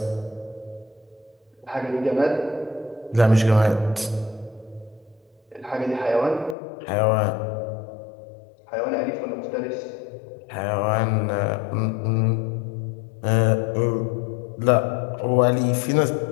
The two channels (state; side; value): drops out; right; at 6.6 s